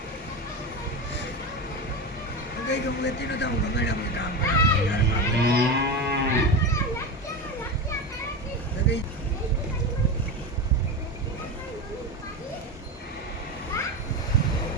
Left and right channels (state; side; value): normal; both; correlation 0.20